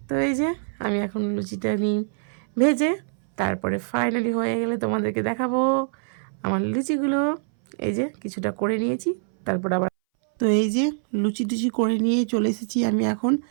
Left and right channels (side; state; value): left; silent; 61 dB below the other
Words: তো এই যে আমি এখন লুচিটা নিই ভেজে, তারপরে ফাইনালি হয়ে গেলে তোমাদেরকে দেখাবো আমার লুচিগুলো। এই যে কিছুটা করে নিয়েছি, তারপর আবার তো এই যে লুচি টুচি করে নিয়ে চলে এসেছি আমি এখন